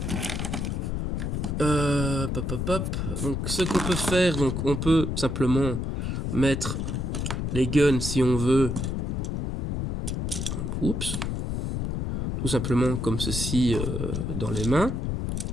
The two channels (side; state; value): left; noise; rumble, 2 dB below the sound